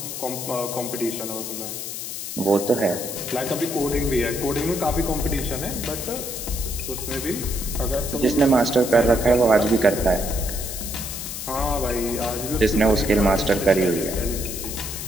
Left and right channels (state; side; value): noise; left; hiss, 7 dB below the sound